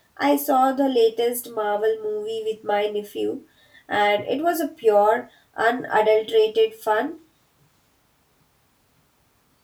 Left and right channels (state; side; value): identical; both; correlation 1.00